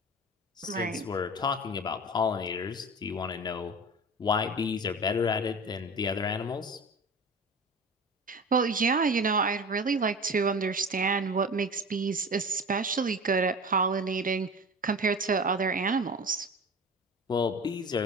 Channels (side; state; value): both; normal; correlation 0.34